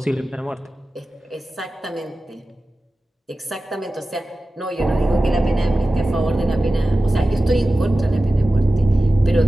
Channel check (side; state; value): both; normal; correlation 0.95